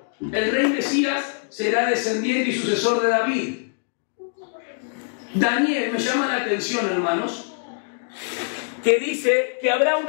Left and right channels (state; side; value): silent; right; 63 dB below the other